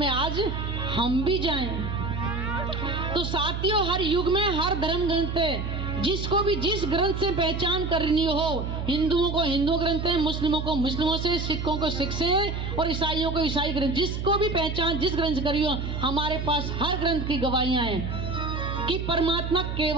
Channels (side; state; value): right; noise; hum, 4 dB below the sound